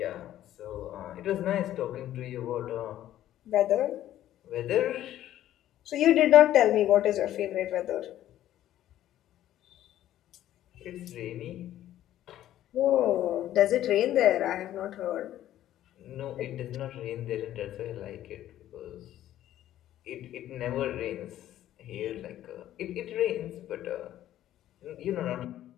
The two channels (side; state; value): right; quieter; 12.7 dB